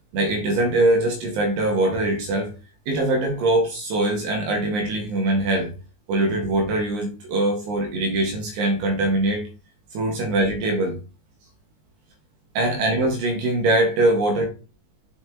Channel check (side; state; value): left; late; 19 ms